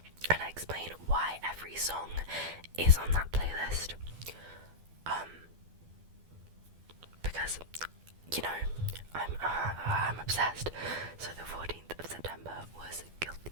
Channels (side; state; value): left; late; 12 ms